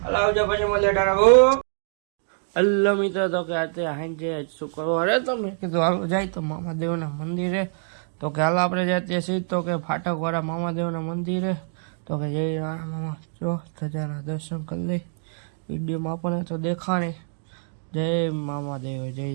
હાલ આવજો પછી મળીએ. ટાટા. હલો મિત્રો, તો કે અત્યારે હાંજે શું કરવા અરે તમે કીધું હાલો જાય તો મામાદેવના મંદિરે. તો કે હાલ આપણે જઈએ છીએ તો કે ફાટકવાળા મામાદેવના મંદિરે. તો કે જય રાણા મામા જો ધજાના દર્શન કરી લઈ. વિડીયોમાં આપણને તો દેખાણી. જય મામાદેવ, જય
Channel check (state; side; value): silent; left; digital silence